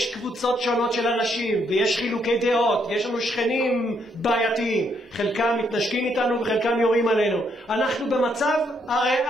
קבוצות שונות של אנשים, ויש חילוקי דעות, ויש לנו שכנים בעייתיים, חלקם מתנשקים איתנו וחלקם יורים עלינו. אנחנו במצב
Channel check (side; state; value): both; normal; correlation 0.73